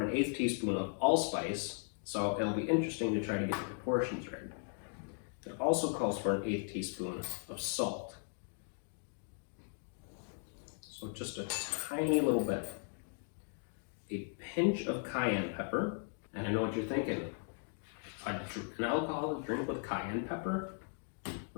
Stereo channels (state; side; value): silent; right; 53 dB below the other